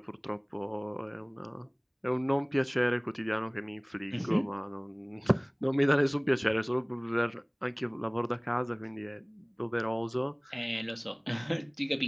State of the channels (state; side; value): identical; both; correlation 1.00